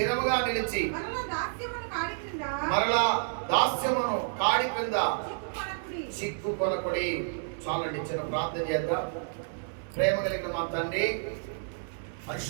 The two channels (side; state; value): left; silent; 58 dB below the other